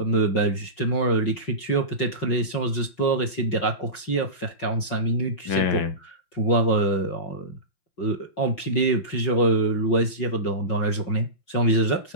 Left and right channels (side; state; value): right; late; 5.4 ms